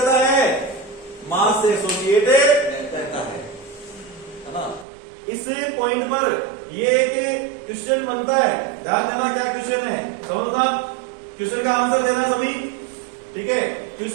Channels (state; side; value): drops out; left; at 4.9 s